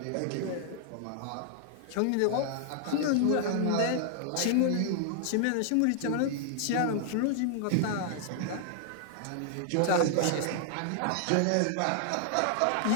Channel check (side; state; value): both; different; correlation -0.01